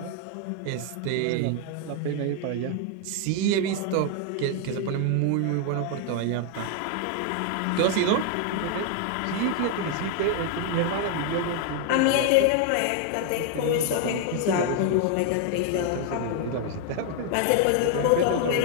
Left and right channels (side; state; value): both; different; correlation 0.00